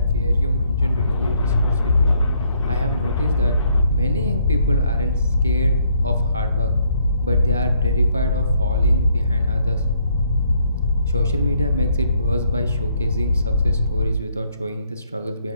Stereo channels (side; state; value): both; inverted; correlation -0.69